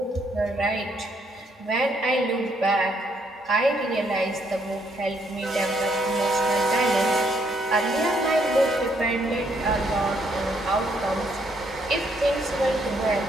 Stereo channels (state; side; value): normal; both; correlation 0.71